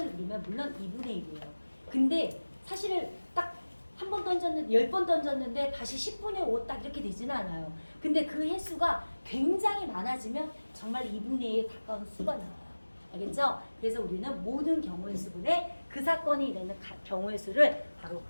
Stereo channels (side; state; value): both; inverted; correlation -1.00